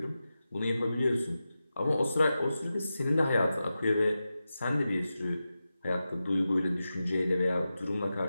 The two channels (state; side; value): inverted; both; correlation -0.92